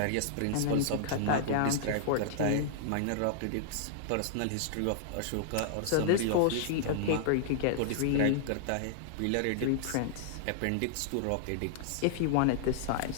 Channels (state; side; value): different; both; correlation -0.01